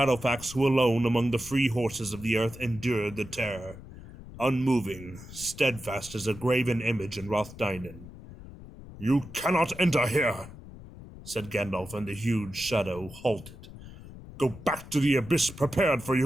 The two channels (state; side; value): noise; left; rumble, 16 dB below the sound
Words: who alone among the free horses of the earth endured the terror, unmoving, steadfast as a graven image in Rothdainen. "You cannot enter here," said Gandalf, and the huge shadow halted. "Go back to the abyss prepared for